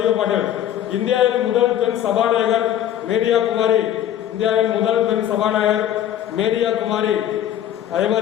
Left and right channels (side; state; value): right; quieter; 11.1 dB